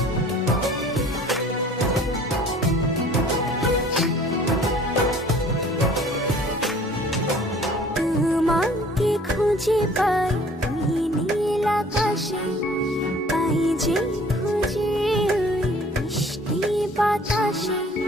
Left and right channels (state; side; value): normal; both; correlation 0.52